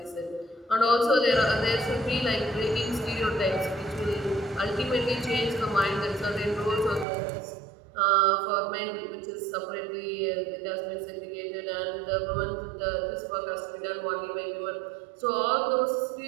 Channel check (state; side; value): drops out; left; at 7.1 s